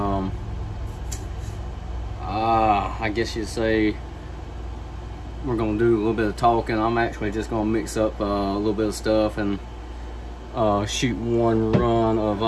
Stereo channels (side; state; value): both; identical; correlation 1.00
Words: I guess you'd say we're going to do a little bit of talking. I'm actually just going to mix up a little bit of stuff and shoot one run of